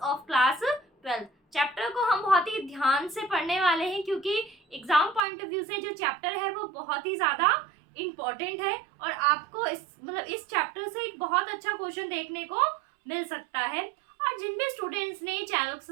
of class 12. Chapter को हम बहुत ही ध्यान से पढ़ने वाले हैं क्योंकि exam point of view से जो चैप्टर है वो बहुत ही ज़्यादा इम्पोर्टेंट है और आपको इस चैप्टर से एक बहुत अच्छा क्वेश्चन देखने को मिल सकता है। और जिन भी स्टूडेंट्स ने चैनल को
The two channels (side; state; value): left; drops out; at 5.2 s